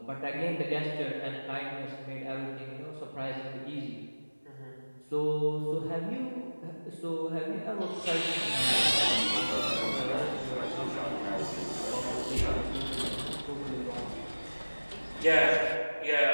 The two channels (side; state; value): both; inverted; correlation -1.00